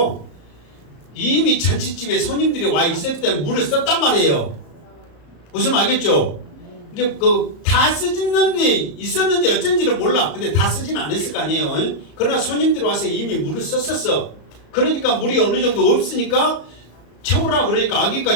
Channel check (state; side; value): late; right; 34 ms